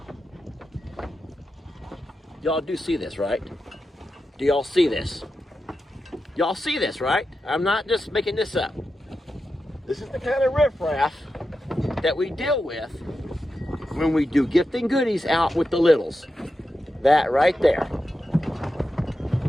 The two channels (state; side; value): normal; both; correlation 0.90